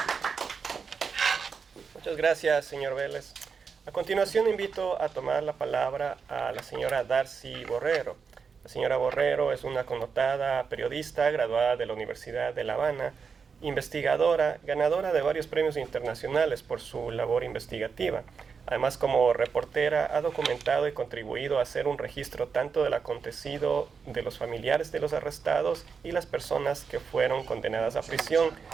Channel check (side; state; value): left; quieter; 5.7 dB